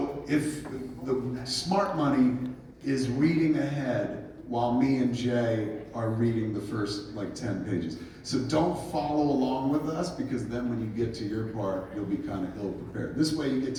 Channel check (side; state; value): both; identical; correlation 1.00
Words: if the smart money is reading ahead while me and Jay are reading the first like 10 pages. So don't follow along with us, because then when you get to your part, you'll be kind of ill prepared. This way you get